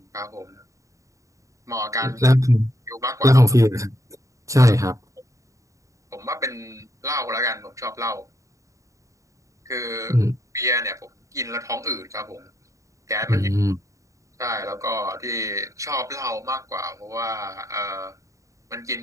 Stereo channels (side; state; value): left; late; 0.16 ms